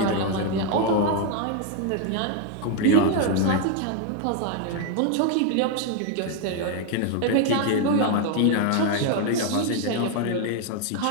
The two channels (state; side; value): different; both; correlation 0.01